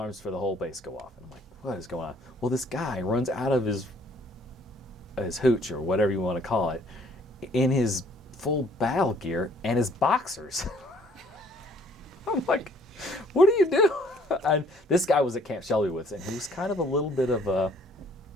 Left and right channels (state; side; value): normal; both; correlation 0.60